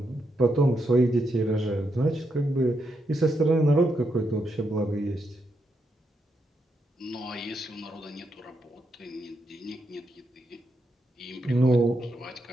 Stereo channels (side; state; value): both; normal; correlation 0.81